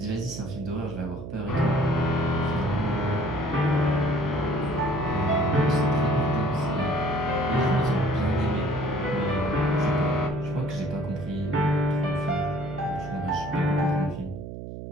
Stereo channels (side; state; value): right; noise; hum, 9 dB below the sound